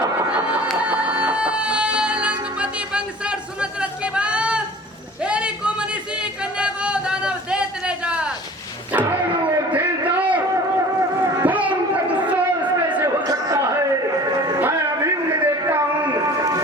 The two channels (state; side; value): normal; both; correlation 0.44